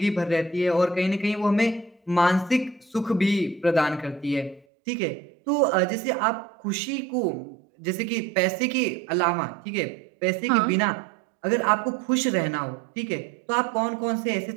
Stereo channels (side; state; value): left; drops out; at 4.7 s